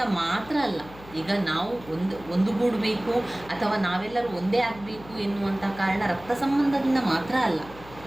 ಮಾತ್ರ ಅಲ್ಲ, ಈಗ ನಾವು ಒಂದುಗೂಡಬೇಕು ಅಥವಾ ನಾವೆಲ್ಲರೂ ಒಂದೇ ಆಗಬೇಕು ಎನ್ನುವಂಥ ಕಾರಣ ರಕ್ತ ಸಂಬಂಧದಿಂದ ಮಾತ್ರ ಅಲ್ಲ,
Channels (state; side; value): noise; left; hum, 19 dB below the sound